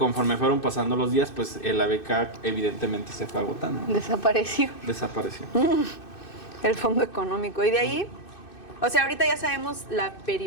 fueron pasando los días, pues la beca evidentemente se fue agotando. Desapareció. El fondo económico. Y de ahí, o sea, ahorita ya sabemos la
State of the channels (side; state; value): right; late; 2.6 ms